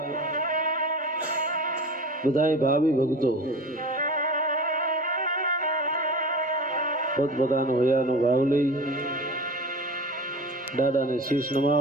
બધા ભાવિ ભક્તો પોતપોતાનો હૈયાનો ભાવ લઈ દાદાને શીશ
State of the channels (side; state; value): both; normal; correlation 0.34